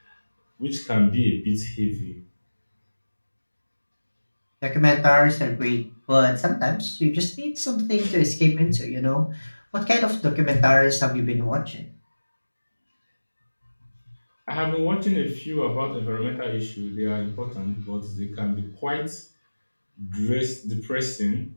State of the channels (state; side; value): inverted; both; correlation -1.00